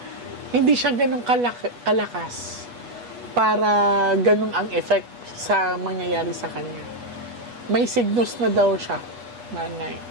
hindi siya ganun kalakas para ganun ang effect sa mangyayari sa kanya. May signals na daw siya, nanay.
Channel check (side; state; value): left; late; 8.3 ms